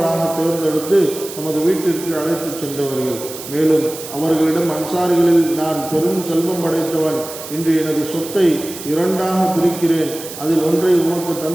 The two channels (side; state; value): right; noise; hiss, 12 dB below the sound